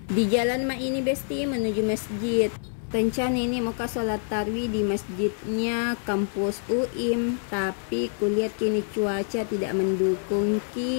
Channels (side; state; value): right; silent; 61 dB below the other